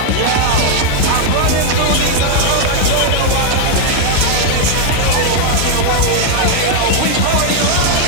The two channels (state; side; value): different; both; correlation 0.00